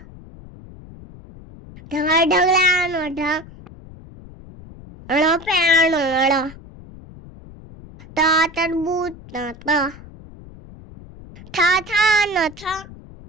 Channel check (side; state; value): left; noise; rumble, 19 dB below the sound